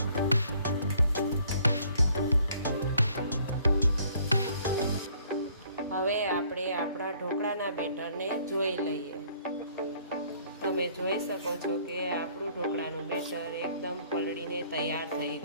હવે આપણે આપણા ઢોકળાના બેટરને જોઈ લઈએ। તમે જોઈ શકો છો કે આપણું ઢોકળાનું બેટર એકદમ પલળીને તૈયાર થઈ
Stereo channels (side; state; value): both; inverted; correlation -0.61